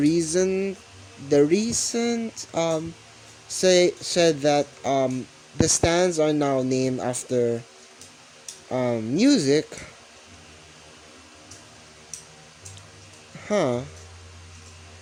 said that the stands are now named after music. Huh?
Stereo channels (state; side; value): identical; both; correlation 1.00